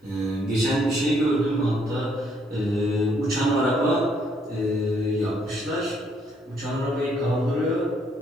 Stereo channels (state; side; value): normal; both; correlation 0.69